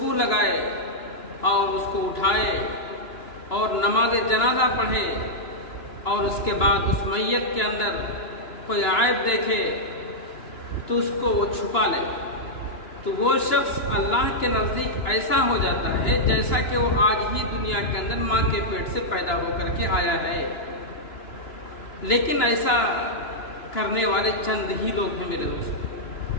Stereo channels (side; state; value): right; late; 2.9 ms